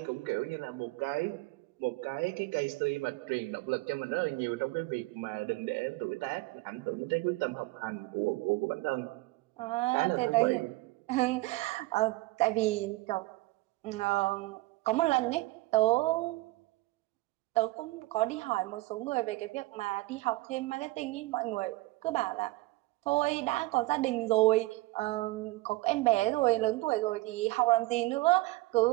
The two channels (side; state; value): left; quieter; 20.4 dB